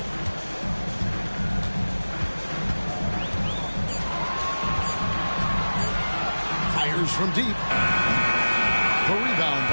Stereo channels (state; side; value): inverted; both; correlation -1.00